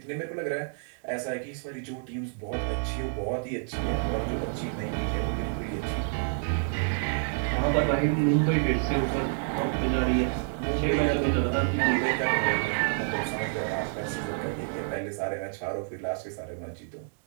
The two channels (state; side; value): silent; left; digital silence